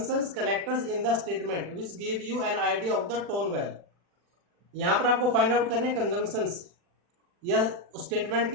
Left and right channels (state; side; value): late; left; 40 ms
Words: connectors in the statement which give you an idea of the tone well. यहां पर आपको फाइंड आउट करने कंजंक्शंस या स्टेटमेंट